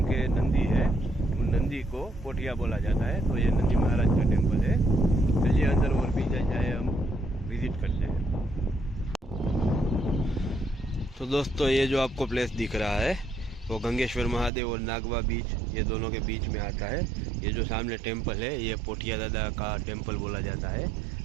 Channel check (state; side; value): drops out; left; at 14.5 s